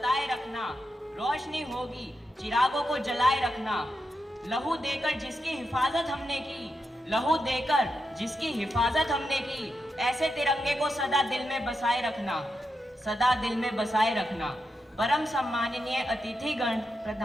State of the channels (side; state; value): both; normal; correlation 0.86